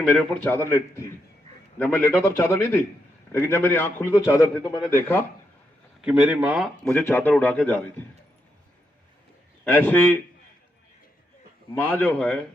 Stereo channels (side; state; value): both; normal; correlation 0.81